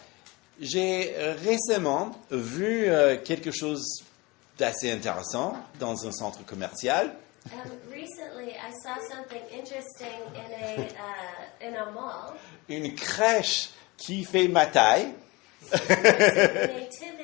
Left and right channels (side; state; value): right; quieter; 24.0 dB